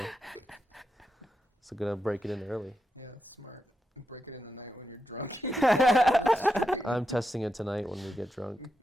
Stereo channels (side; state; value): both; normal; correlation 0.86